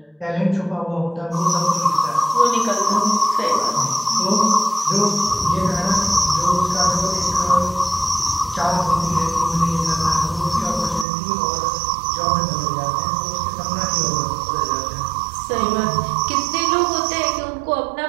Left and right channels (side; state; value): left; drops out; at 11.1 s